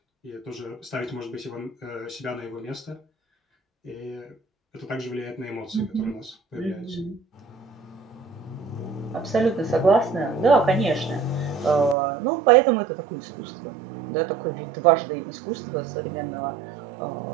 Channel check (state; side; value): drops out; left; at 12.0 s